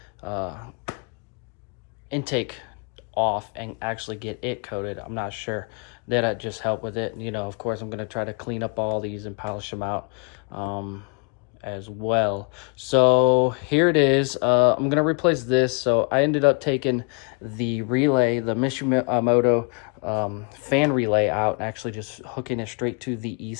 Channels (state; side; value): quieter; right; 36.9 dB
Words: intake off and actually get it coated. I'm not sure. That'll just help with it. Of course I'm going to try to clean up all these and polish them out as well. So here it is. I'm going to replace this. So I ended up taking the relay, the Mishimoto fan relay out, and actually just hooking it straight to the